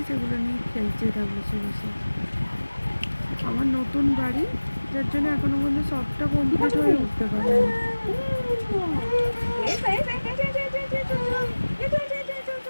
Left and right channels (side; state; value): both; inverted; correlation -1.00